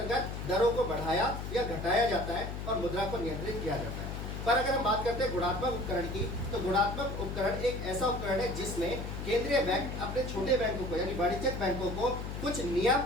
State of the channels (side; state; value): left; noise; hum, 6 dB below the sound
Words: दरों को बढ़ाया या घटाया जाता है और मुद्रा को नियंत्रित किया जाता है। पर अगर हम बात करते हैं गुणात्मक उपकरण की, तो गुणात्मक उपकरण एक ऐसा उपकरण है जिसमें केंद्रीय बैंक अपने छोटे बैंकों को यानी वाणिज्यिक बैंकों को कुछ नियम